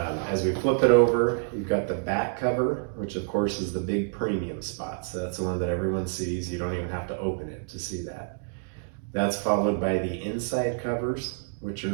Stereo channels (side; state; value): left; silent; digital silence